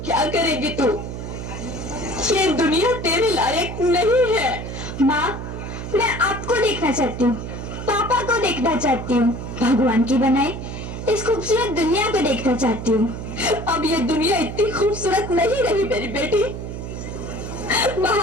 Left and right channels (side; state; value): right; noise; hum, 7 dB below the sound